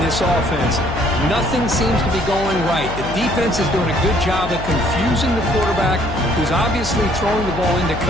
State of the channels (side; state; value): left; noise; hum, 9 dB below the sound